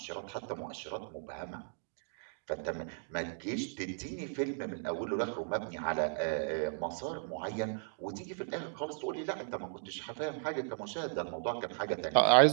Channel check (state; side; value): silent; left; digital silence